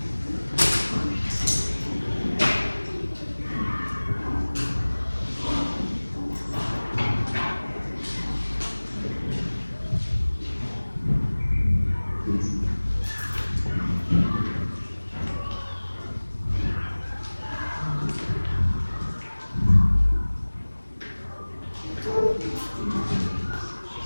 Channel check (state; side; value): inverted; both; correlation -1.00